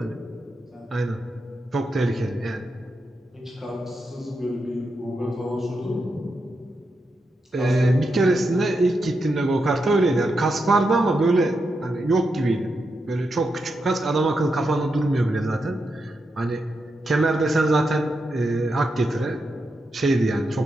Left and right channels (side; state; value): both; normal; correlation 0.85